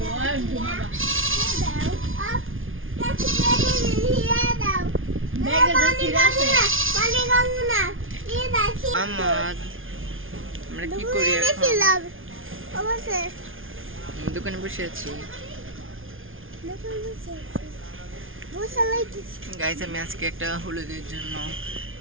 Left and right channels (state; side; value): late; left; 0.58 ms